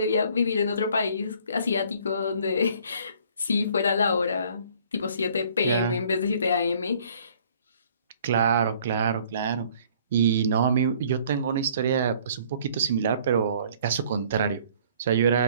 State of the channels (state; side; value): inverted; both; correlation -0.57